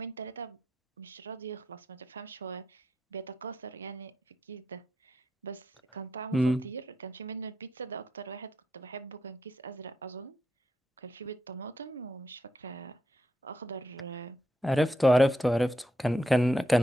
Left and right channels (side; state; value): both; normal; correlation 0.84